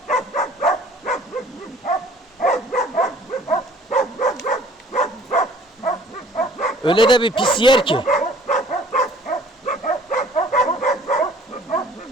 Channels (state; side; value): normal; both; correlation 0.53